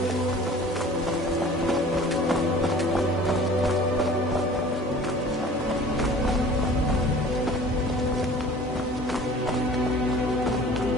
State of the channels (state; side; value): normal; both; correlation 0.46